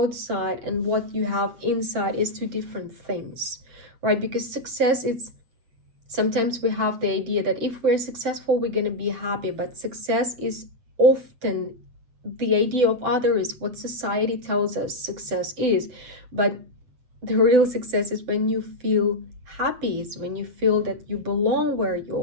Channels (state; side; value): late; left; 8.3 ms